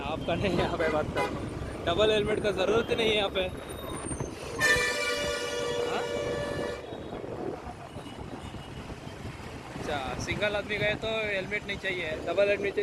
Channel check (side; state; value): both; identical; correlation 1.00